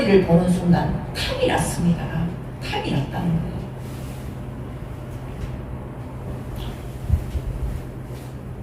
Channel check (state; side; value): identical; both; correlation 1.00